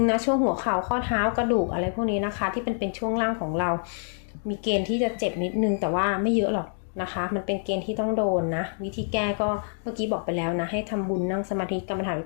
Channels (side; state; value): right; silent; digital silence